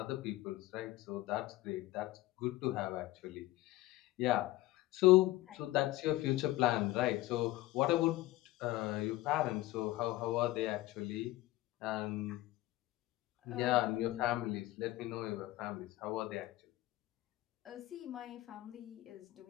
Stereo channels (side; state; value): right; quieter; 17.5 dB